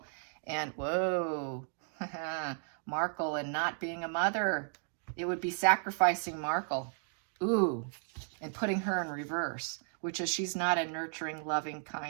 And whoa, Markle and not being a mother. It would be sacrificing Markle. Ooh, and putting her in reverse, which is she's not a nurturing, loving,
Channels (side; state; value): left; silent; 55 dB below the other